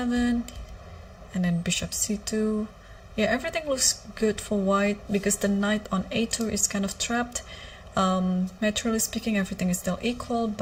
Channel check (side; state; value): both; identical; correlation 1.00